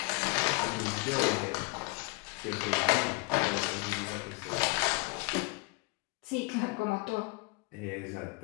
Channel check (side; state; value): right; quieter; 27.8 dB